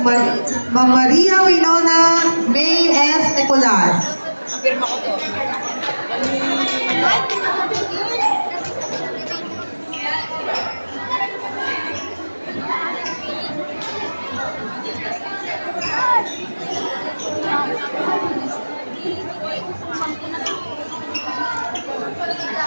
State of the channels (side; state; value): both; inverted; correlation -1.00